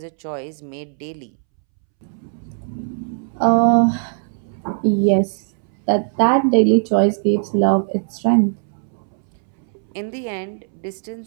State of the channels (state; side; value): silent; left; 66 dB below the other